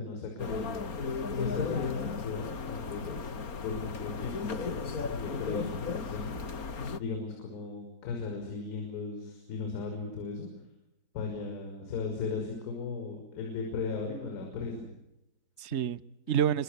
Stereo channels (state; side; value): late; right; 4.3 ms